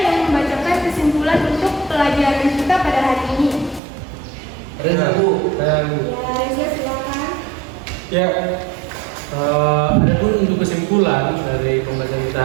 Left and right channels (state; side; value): drops out; left; at 3.8 s